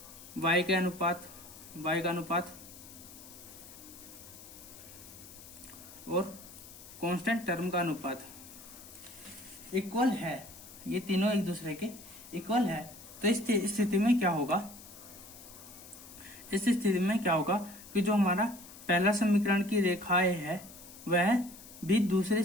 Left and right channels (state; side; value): noise; left; hiss, 17 dB below the sound